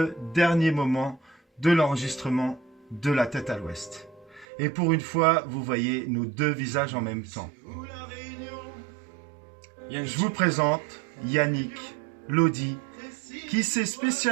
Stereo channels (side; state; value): left; drops out; at 4.5 s